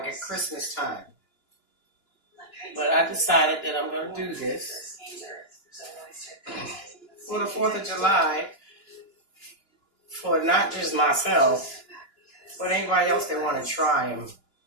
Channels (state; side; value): late; right; 2.9 ms